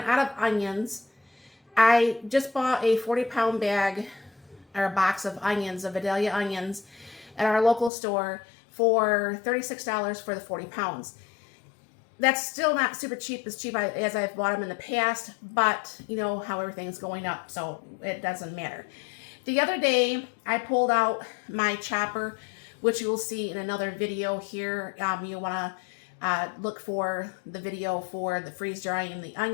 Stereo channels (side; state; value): right; drops out; at 7.9 s